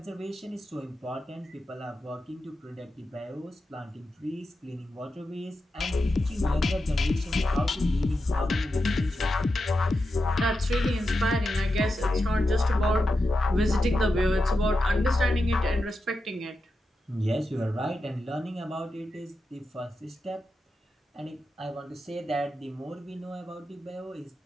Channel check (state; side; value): normal; both; correlation 0.89